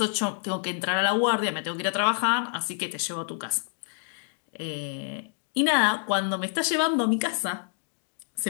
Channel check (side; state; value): right; silent; 60 dB below the other